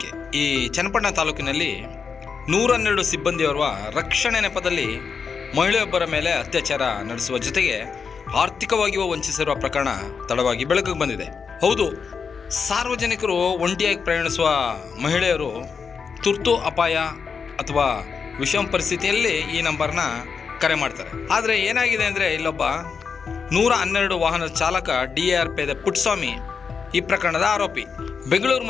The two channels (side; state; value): right; quieter; 5.8 dB